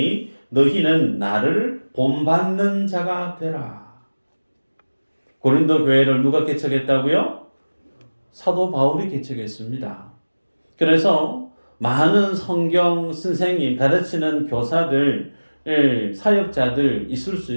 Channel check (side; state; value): both; inverted; correlation -1.00